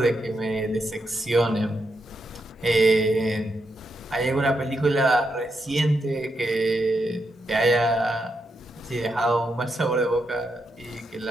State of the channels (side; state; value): both; normal; correlation 0.83